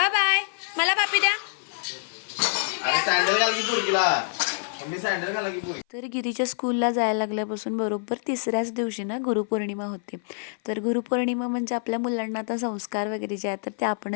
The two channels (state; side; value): silent; right; 56 dB below the other